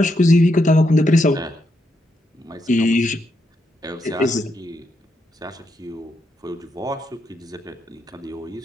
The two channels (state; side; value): normal; both; correlation 0.81